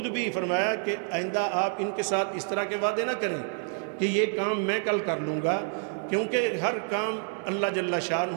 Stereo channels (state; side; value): silent; left; 59 dB below the other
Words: بھی فرمایا کہ آئندہ آپ ان کے ساتھ اس طرح کے وعدے نہ کریں کہ یہ کام میں کل کر لوں گا، کیونکہ ہر کام اللہ جل